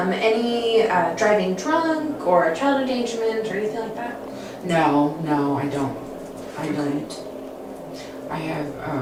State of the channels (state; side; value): identical; both; correlation 1.00